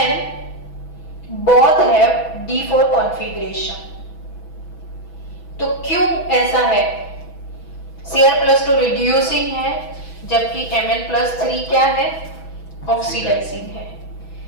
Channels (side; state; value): right; late; 6.1 ms